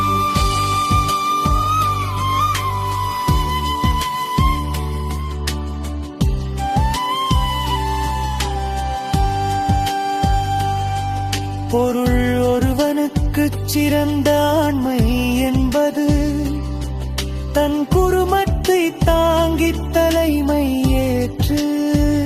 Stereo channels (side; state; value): both; identical; correlation 1.00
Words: பொருள் ஒருவனுக்குச் சிறந்த ஆண்மை என்பது தன் குடும்பத்தை தாங்கித் தலைமை ஏற்று